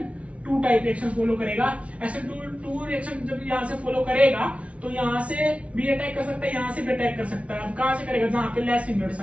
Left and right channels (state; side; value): late; left; 0.063 ms